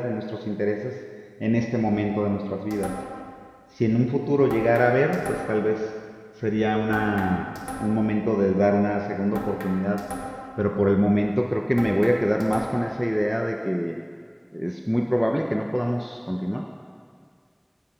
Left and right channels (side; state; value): both; identical; correlation 1.00